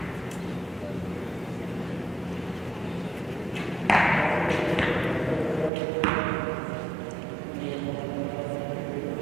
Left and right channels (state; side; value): drops out; left; at 5.7 s